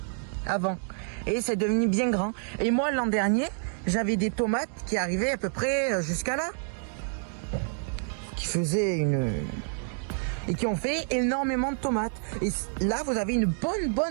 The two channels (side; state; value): left; silent; 57 dB below the other